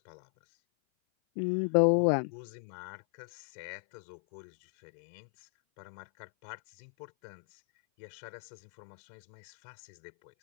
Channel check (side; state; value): right; silent; 54 dB below the other